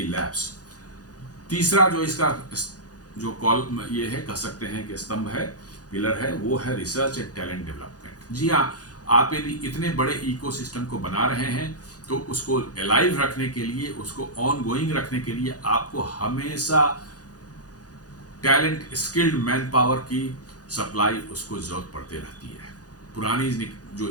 labs. तीसरा जो इसका जो कॉल ये है, कह सकते हैं कि स्तंभ है, पिलर है, वो है रिसर्च एंड टैलेंट डेवलपमेंट। जी हाँ, आप यदि इतने बड़े इकोसिस्टम को बना रहे हैं तो उसको अलाइव रखने के लिए, उसको ऑन गोइंग रखने के लिए आपको हमेशा टैलेंट, स्किल्ड मैन पावर की सप्लाई उसको जरूरत पड़ती रहती है। पुरानी जो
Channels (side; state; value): right; late; 0.68 ms